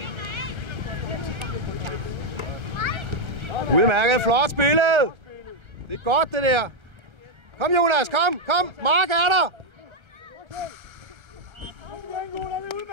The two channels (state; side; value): late; left; 1.3 ms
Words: Udmærket, flot spillet. Det er godt, det der. Kom, Jonas, kom. Mark er der.